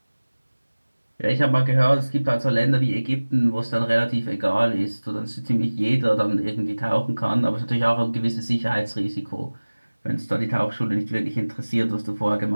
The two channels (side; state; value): both; inverted; correlation -1.00